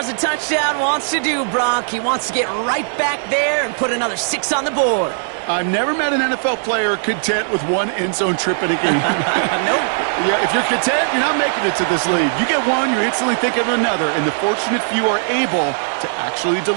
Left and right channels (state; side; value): silent; left; digital silence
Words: a touchdown wants to do, Brock. He wants to get right back there and put another 6 on the board. I've never met an NFL player content with one end zone trip in a game. Nope. Yeah, if you're content, you're not making it to this league. You get one, you're instantly thinking of another, and the fortunate few are able to actually